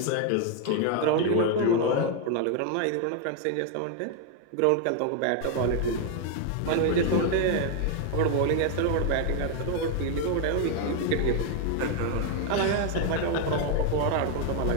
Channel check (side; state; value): both; different; correlation 0.01